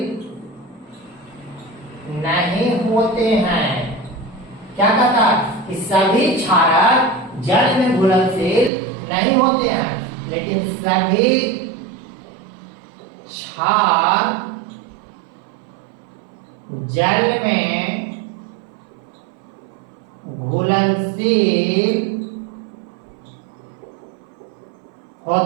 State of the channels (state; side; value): drops out; left; at 8.7 s